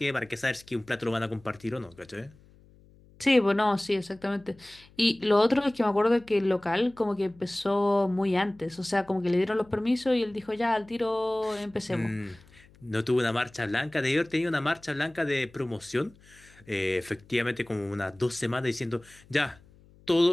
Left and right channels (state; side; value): noise; left; hum, 27 dB below the sound